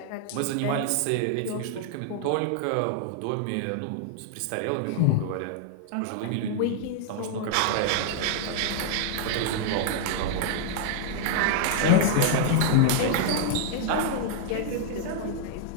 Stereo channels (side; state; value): both; different; correlation -0.01